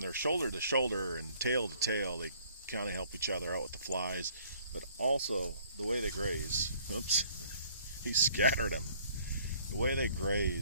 they're shoulder to shoulder and tail to tail, they kind of help each other out with the flies, but also the way they graze. Oops, he scattered them. The way they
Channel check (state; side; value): inverted; both; correlation -0.59